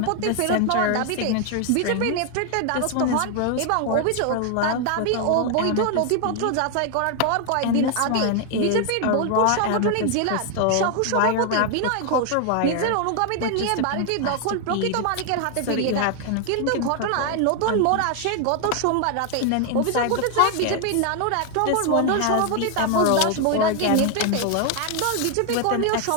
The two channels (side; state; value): both; different; correlation 0.00